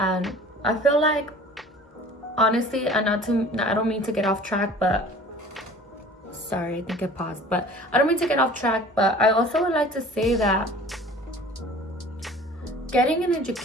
I feel like, honestly, and I don't mean to get off track, but sorry, I think I paused, but I don't mean to get off track, but I also would like to say that getting an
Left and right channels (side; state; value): both; normal; correlation 0.45